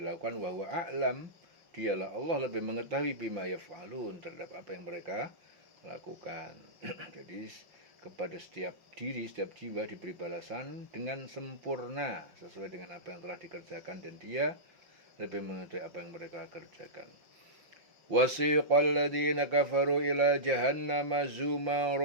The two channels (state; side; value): late; left; 5.8 ms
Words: Wa huwa a'lam, dialah Allah lebih mengetahui bima yaf'alun, terhadap apa yang mereka lakukan. Jadi kepada setiap diri, setiap jiwa diberi balasan dengan sempurna sesuai dengan apa yang telah dikerjakan, dan dia lebih mengetahui apa yang mereka kerjakan. Wasiqal ladzina kafaru ila jahannama